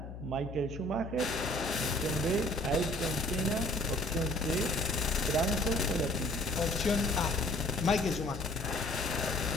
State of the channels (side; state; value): left; noise; hum, 10 dB below the sound